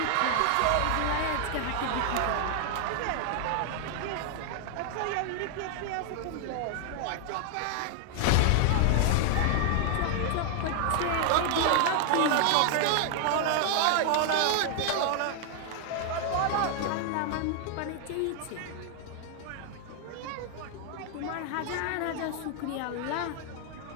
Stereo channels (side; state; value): both; different; correlation 0.00